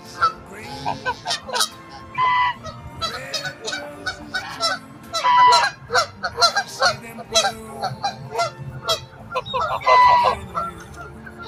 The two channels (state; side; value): identical; both; correlation 1.00